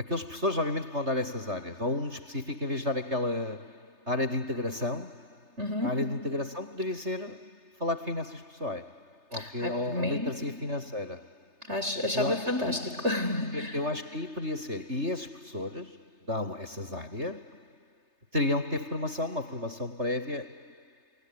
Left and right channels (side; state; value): left; late; 3.3 ms